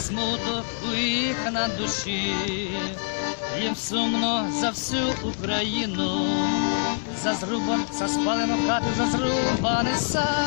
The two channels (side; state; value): right; silent; 62 dB below the other